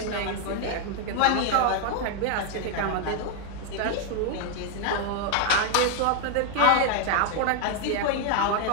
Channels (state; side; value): different; both; correlation 0.00